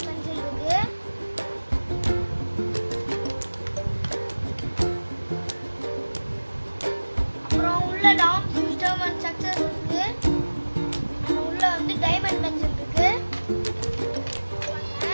பென்சில் இருக்குது. டாம்ஸ் விஸ்டம் அண்ட் சக்சஸ் இருக்கு. உள்ள வந்து டைமண்ட் பென்சில் இருக்கு.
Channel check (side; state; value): both; inverted; correlation -1.00